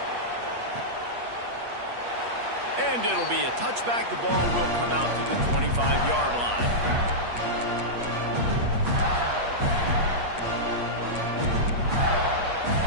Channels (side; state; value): left; late; 8.4 ms